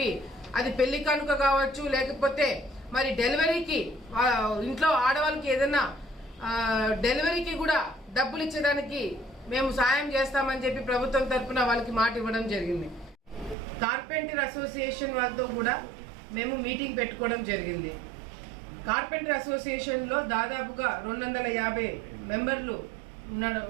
అది పెళ్లి కానుక కావచ్చు, లేకపోతే మరి డెలివరీకి ఇంట్లో ఆడవాళ్ళకి ఏదైనా డెలివరీకి కూడా డబ్బులు ఇచ్చేదానికి మేము సాయం చేస్తామని చెప్పి ప్రభుత్వం తరఫున వాళ్ళకి మాట ఇవ్వడం జరిగింది. కార్పెంటర్ అసోసియేషన్ వాళ్ళతో కూడా మేము మీటింగ్ పెట్టుకోవడం జరిగింది. కార్పెంటర్ అసోసియేషన్లో దాదాపుగా 250 మెంబర్లు ఉన్నారు.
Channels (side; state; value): left; drops out; at 13.6 s